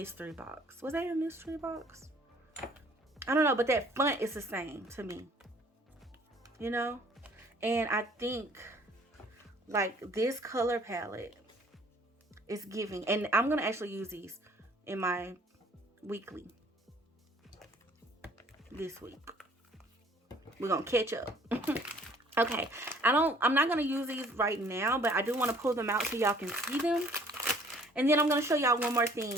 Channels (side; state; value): both; normal; correlation 0.56